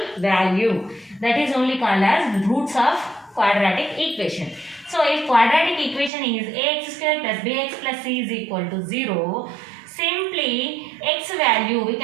value. That is only called as roots of quadratic equation. So if quadratic equation is ax square plus bx plus c is equal to 0, simply x value, we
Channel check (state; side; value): drops out; left; at 6.1 s